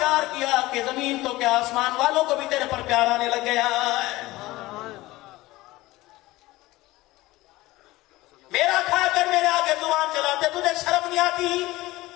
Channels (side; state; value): right; quieter; 18.7 dB